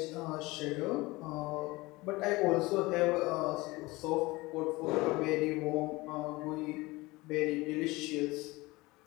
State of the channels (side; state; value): right; quieter; 21.8 dB